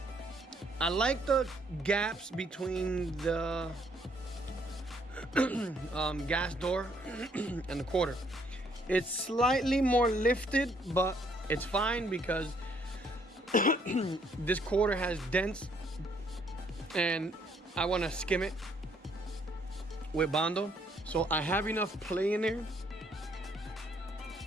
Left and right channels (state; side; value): normal; both; correlation 0.67